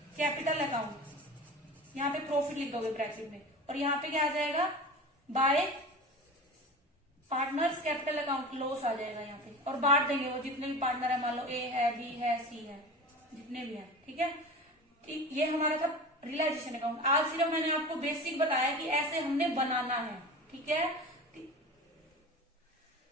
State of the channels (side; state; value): both; normal; correlation 0.33